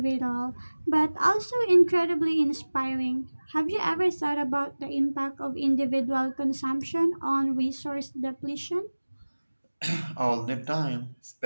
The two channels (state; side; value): inverted; both; correlation -1.00